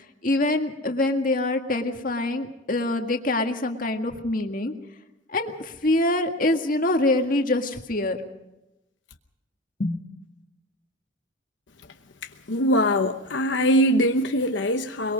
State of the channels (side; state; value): both; normal; correlation 0.27